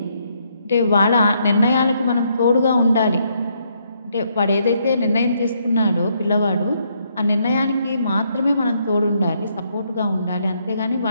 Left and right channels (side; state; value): both; inverted; correlation -0.73